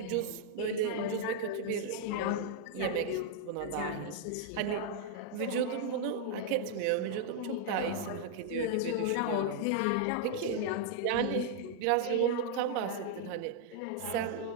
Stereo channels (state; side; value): different; both; correlation -0.01